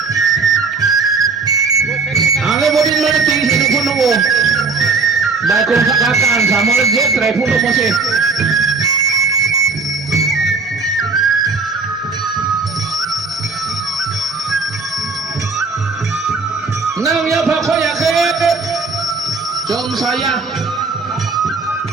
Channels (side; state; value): left; quieter; 4.4 dB